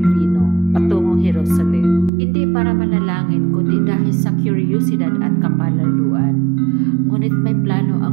patungong Jerusalem. Hindi para manalangin, kundi dahil sa kuryosidad at kapalaluan. Ngunit may plano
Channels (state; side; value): drops out; left; at 2.1 s